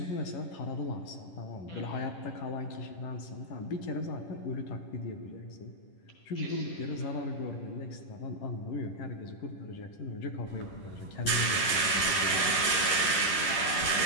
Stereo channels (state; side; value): late; right; 11 ms